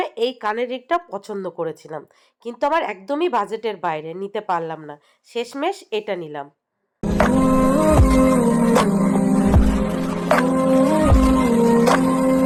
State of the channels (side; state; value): both; identical; correlation 1.00